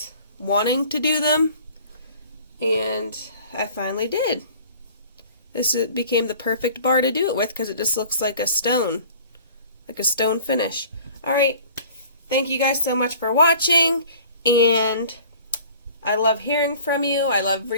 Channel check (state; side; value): inverted; both; correlation -0.48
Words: wanting to do them. And I finally did. This became the perfect bar to do it with because it just looks like a stone finish. Alright, thank you guys so much for watching, and I love hearing from you. I love